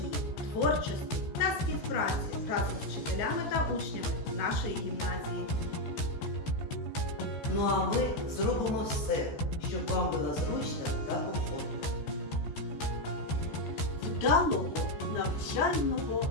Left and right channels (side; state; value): right; late; 14 ms